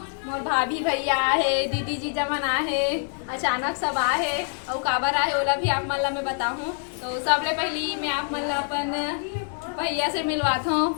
मोर भाभी भैया आहे, दीदी जीजा मन आहे, अचानक सब आए और काबर आए ओला भी आप मन ला मैं बताऊँ। तो सबले पहली मैं आप मन ला अपन भैया से मिलवात हूँ।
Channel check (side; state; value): right; silent; 56 dB below the other